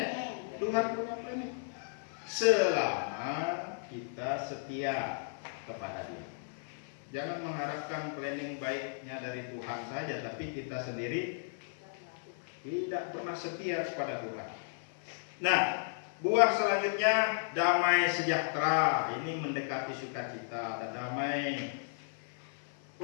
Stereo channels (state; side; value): silent; right; 55 dB below the other